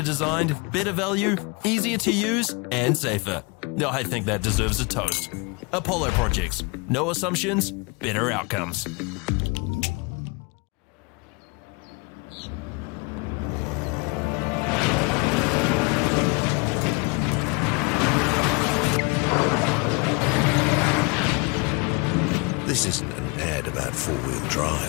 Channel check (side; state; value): right; quieter; 29.1 dB